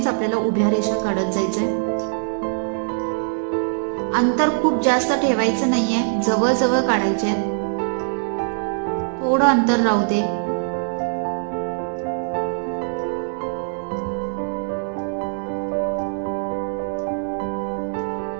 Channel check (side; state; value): left; silent; digital silence